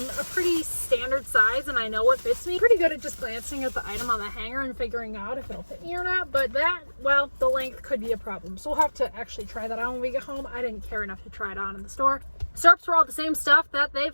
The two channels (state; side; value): inverted; both; correlation -1.00